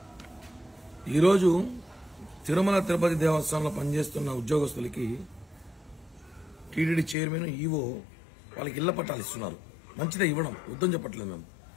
ఈరోజు తిరుమల తిరుపతి దేవస్థానంలో పనిచేస్తున్న ఉద్యోగస్తులకి టీటీడీ చైర్మన్ ఈవో వాళ్ళకి ఇళ్ల పట్టాలు ఇస్తున్నారు. మంచిదే, ఇవ్వడం వద్దని చెప్పట్లేదు మేము.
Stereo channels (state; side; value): drops out; right; at 7.2 s